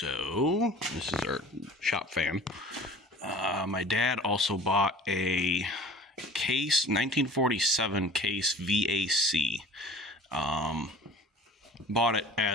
this is our shop fan. My dad also bought a Case 1947 Case VAC. Bought it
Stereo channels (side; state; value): both; normal; correlation 0.44